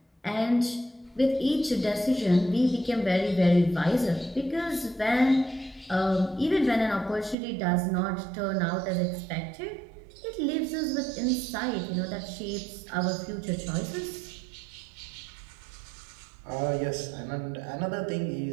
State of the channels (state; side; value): drops out; left; at 7.4 s